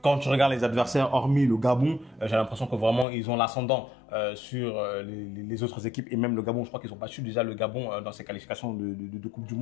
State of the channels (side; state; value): right; drops out; at 3.1 s